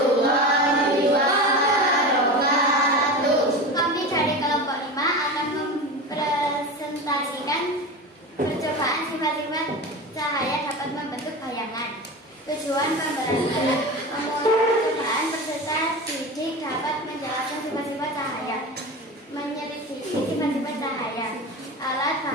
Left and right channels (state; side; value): normal; both; correlation 0.27